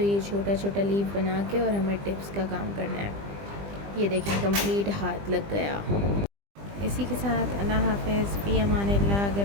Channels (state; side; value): late; left; 20 ms